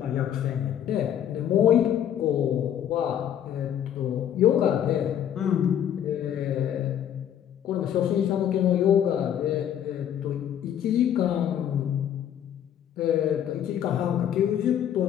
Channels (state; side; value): quieter; right; 9.9 dB